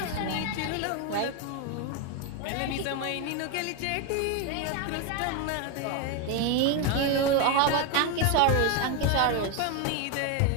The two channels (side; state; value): both; different; correlation 0.02